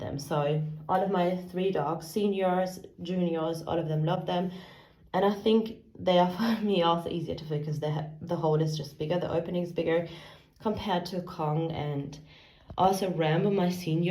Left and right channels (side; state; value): both; identical; correlation 1.00